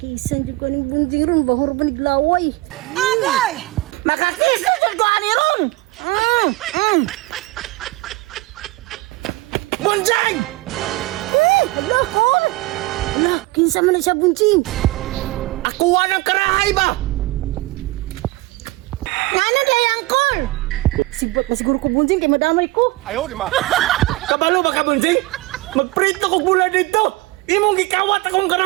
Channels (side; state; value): left; quieter; 20.0 dB